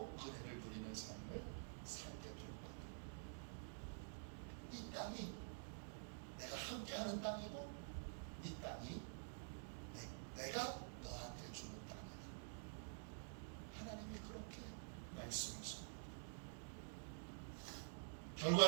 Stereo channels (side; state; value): left; silent; digital silence